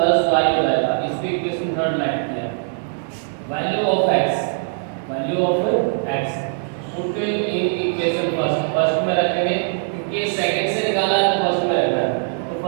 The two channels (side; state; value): left; silent; digital silence